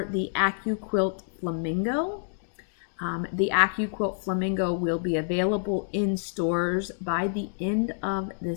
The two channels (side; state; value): right; silent; digital silence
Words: the Accu Quilt Flamingo, the Accu Quilt Flamingo will be available in stores by the end of